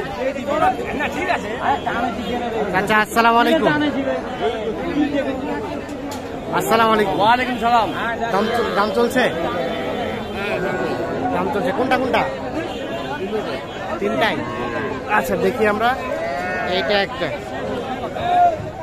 আচ্ছা, আসসালামু আলাইকুম। আসসালামু আলাইকুম। ওয়ালাইকুম সালাম। দাম চলছে? দাম চলছে কোনটা কোনটা? তিনটাই। আচ্ছা, দেখি আমরা। এইটা একটা,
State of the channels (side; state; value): both; identical; correlation 1.00